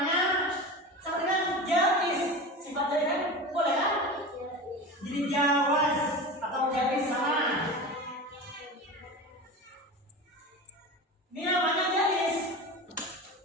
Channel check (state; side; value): normal; both; correlation 0.29